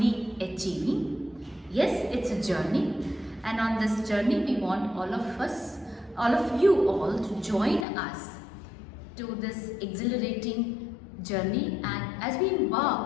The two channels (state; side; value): drops out; right; at 7.9 s